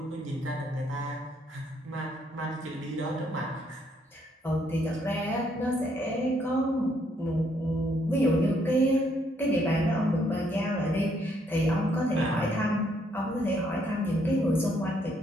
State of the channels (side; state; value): both; normal; correlation 0.71